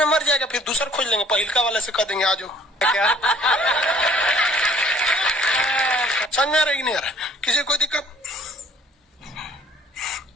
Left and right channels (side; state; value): both; normal; correlation 0.57